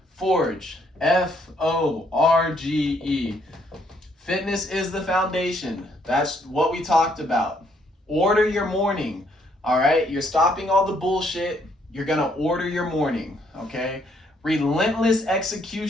Forge, F-O-R-G-E. Fitness is the foundation. That's what we talked about. Order your morning, all right? You're stopping all the bullshit. You're going to order your morning, okay? Relentless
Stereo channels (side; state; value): both; normal; correlation 0.69